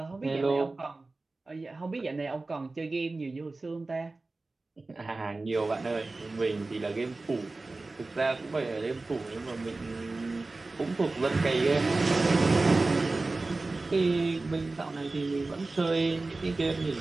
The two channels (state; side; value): quieter; left; 3.3 dB